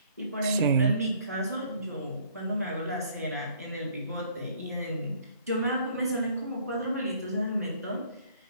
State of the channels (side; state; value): both; inverted; correlation -0.60